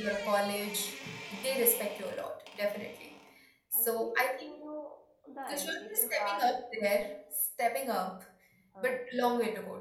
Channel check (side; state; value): both; identical; correlation 1.00